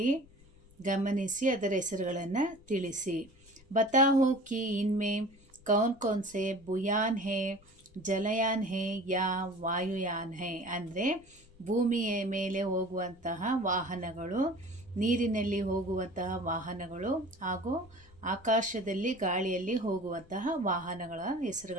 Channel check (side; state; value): left; noise; rumble, 26 dB below the sound